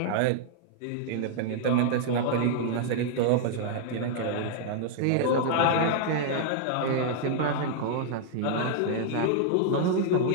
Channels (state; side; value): different; both; correlation -0.01